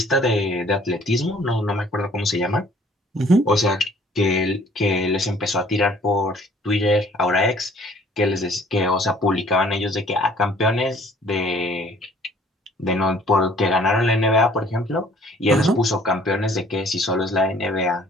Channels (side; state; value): both; normal; correlation 0.56